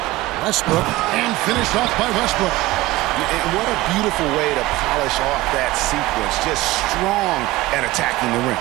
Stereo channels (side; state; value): left; quieter; 18.3 dB